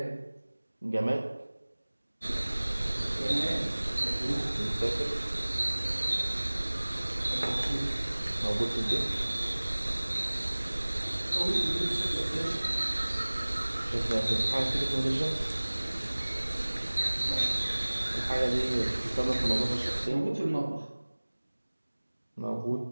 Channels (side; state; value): both; inverted; correlation -1.00